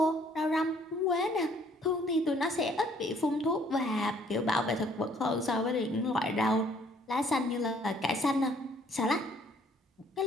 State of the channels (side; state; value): both; normal; correlation 0.62